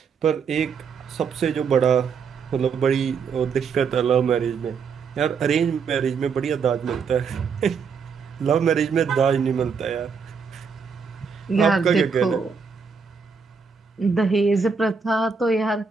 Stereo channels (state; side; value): quieter; left; 5.7 dB